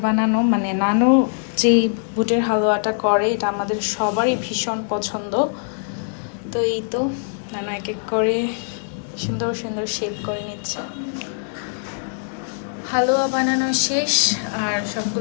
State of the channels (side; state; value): right; silent; digital silence